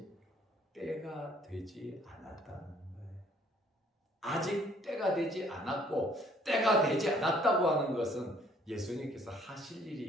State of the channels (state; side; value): normal; both; correlation 0.61